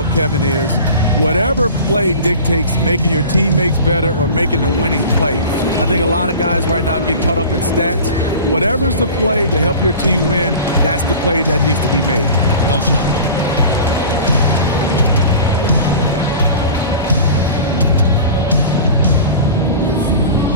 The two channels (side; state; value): both; inverted; correlation -0.38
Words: Kevin, is whatever play dictates making your teammates better or making the winning play. I think a lot of guys right now get caught up in stats. Whatever's the play to help your team win, that's the play that needs to be made. Yeah, well said.